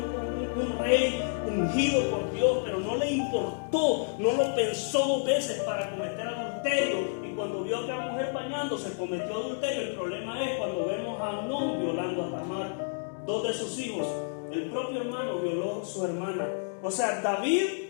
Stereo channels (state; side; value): silent; right; digital silence